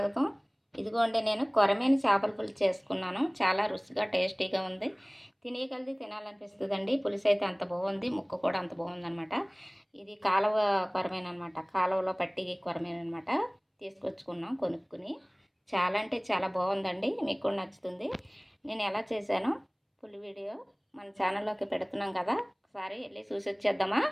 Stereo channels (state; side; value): identical; both; correlation 1.00